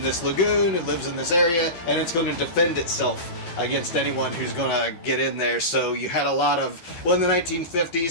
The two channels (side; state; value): right; late; 12 ms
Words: this lagoon, it lives in this area, and it's going to defend itself against anyone who's going to get in there. So you had a lot of, in the